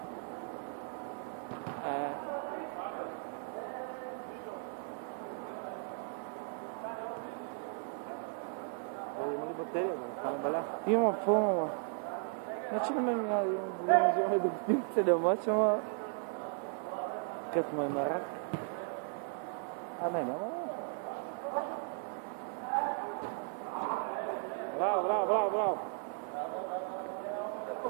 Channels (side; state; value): left; silent; 54 dB below the other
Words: Има ли батерия, да не стане беля? Има пълно, бе. Значи на мен няма да имам голяма желание да го снимам целият мач, ама... Като му е на рак. Не, няма лошо. Браво, браво, браво, браво!